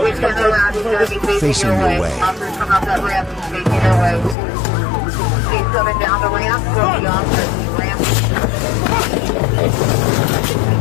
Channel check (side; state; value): right; drops out; at 4.4 s